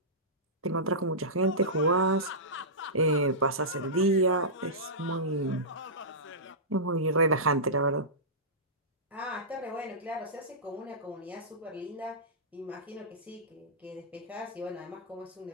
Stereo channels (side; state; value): both; normal; correlation -0.16